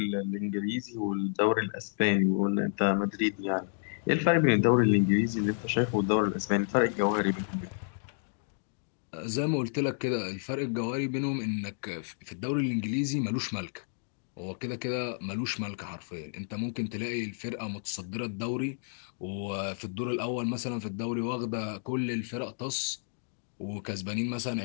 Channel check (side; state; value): right; silent; digital silence